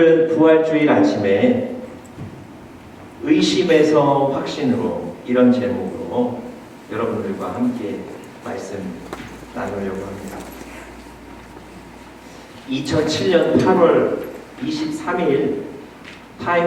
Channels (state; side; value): identical; both; correlation 1.00